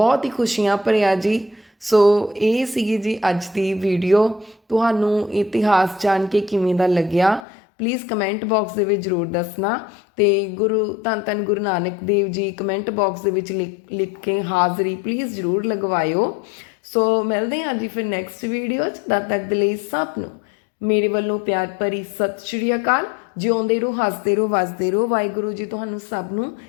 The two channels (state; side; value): drops out; right; at 7.5 s